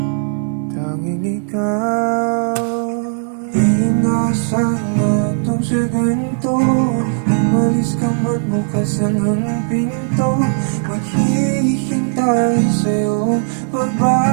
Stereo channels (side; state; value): left; silent; 68 dB below the other